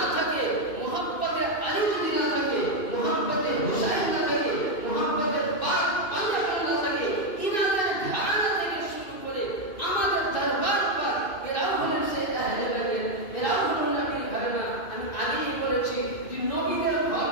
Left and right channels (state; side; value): late; right; 2.6 ms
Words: থাকে, মুহাব্বতে আলী যদি না থাকে, মুহাব্বতে হুসাইন না থাকে, মুহাব্বতে পাক পাঞ্জাবি না থাকে, ইনাদের ধারণা থেকে শুরু করে আমাদের দরবার পর এরাও হলেন সে আহলে বাইত, এরাও হলেন নবীর ধারণা। আমি আগেই বলেছি যে নবীদের ঘর